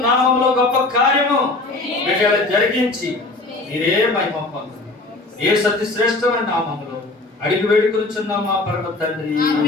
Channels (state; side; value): quieter; right; 3.0 dB